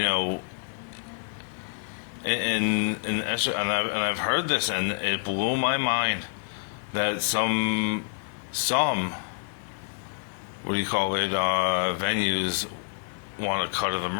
I've heard this, and it blew my mind that some what do you call it, venues want a cut of the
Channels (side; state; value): right; silent; digital silence